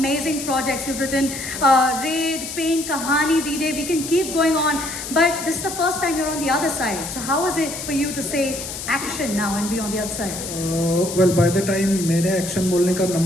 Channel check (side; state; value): left; noise; hiss, 7 dB below the sound